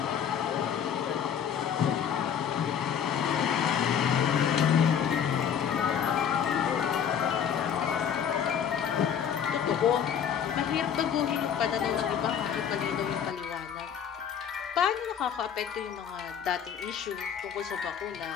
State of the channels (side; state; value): right; quieter; 8.2 dB